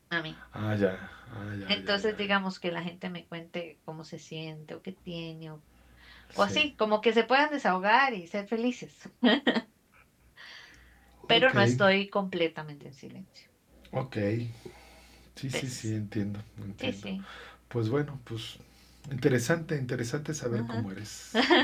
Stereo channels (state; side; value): identical; both; correlation 1.00